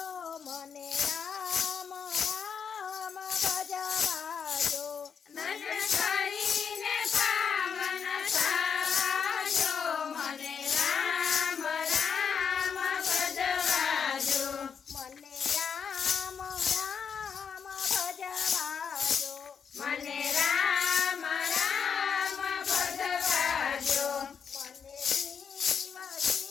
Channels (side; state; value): right; quieter; 6.7 dB